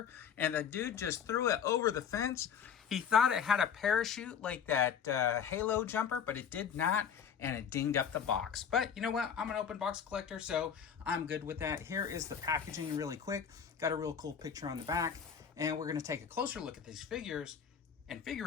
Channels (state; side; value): quieter; right; 7.5 dB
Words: and the dude just threw it over the fence. He thought it had a parachute like that Halo jumper, but it did not, and it dinged up the box. But you know what? I'm an open box collector, so I'm good with that. Here is the packaging really quick. Got a real cool picture on the back, and we're going to take a closer look at these figures and